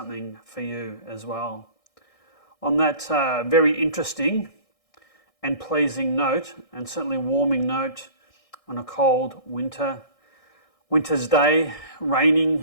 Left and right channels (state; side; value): late; right; 1.6 ms